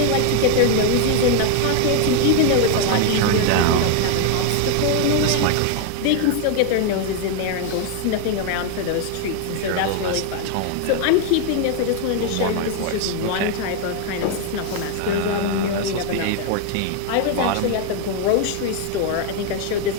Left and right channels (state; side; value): different; both; correlation 0.00